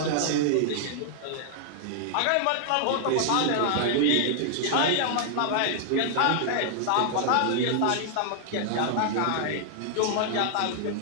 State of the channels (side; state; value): both; different; correlation -0.01